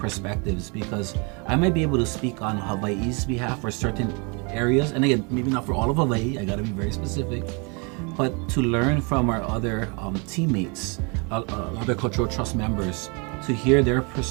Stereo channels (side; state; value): left; quieter; 32.2 dB